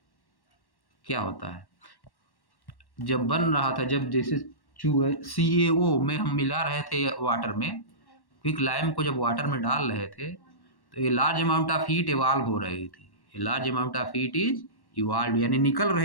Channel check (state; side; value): late; right; 1.1 ms